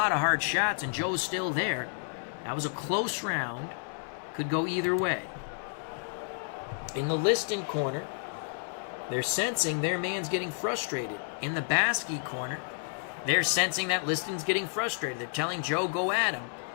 of hard shots, and Joe's still there. That was a close round. Could go either way. In the Liston corner, they're sensing their man's getting frustrated. In the Baski corner, they're sensing that Liston's getting frustrated. They're telling Joe, go at him.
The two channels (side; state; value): right; silent; 57 dB below the other